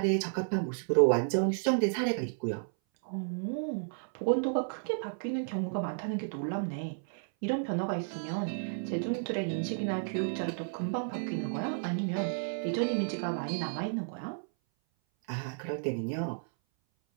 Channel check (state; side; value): silent; left; 56 dB below the other